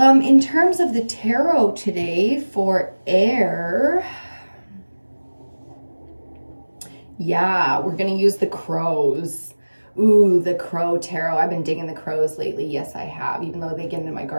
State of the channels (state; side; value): inverted; both; correlation -1.00